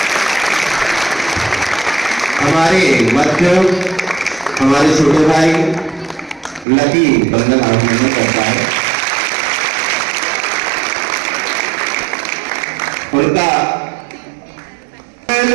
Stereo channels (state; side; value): drops out; left; at 6.7 s